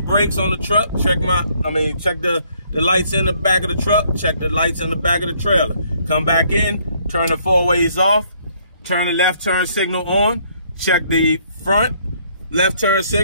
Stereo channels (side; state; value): both; inverted; correlation -0.66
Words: on the truck. Check the lights in the back of the truck. Check the lights in the back of the trailer. Come back in. Turn the 4-ways off. Turn the left turn signal on. Check the front left turn